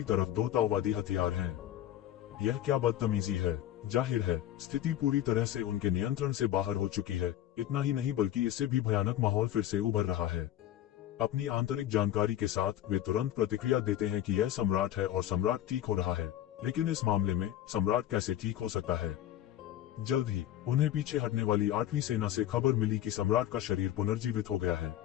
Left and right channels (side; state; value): right; quieter; 12.2 dB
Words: तरफ 2 ताओवादी हथियार हैं। यह क्या बदतमीजी है। जाहिर है स्थिति पूरी तरह से उनके नियंत्रण से बाहर हो चुकी है। इतना ही नहीं बल्कि इससे भी भयानक माहौल फिर से उभर रहा है। अपनी आंतरिक जानकारी के साथ वे तुरंत प्रतिक्रिया देते हैं कि यह सम्राट है और सम्राट ठीक हो रहा है, लेकिन इस मामले में सम्राट कैसे ठीक हो सकता है? जल्द ही उन्हें पीछे हटने वाली 8वीं सेना से खबर मिली कि सम्राट का शरीर पुनर्जीवित हो गया है,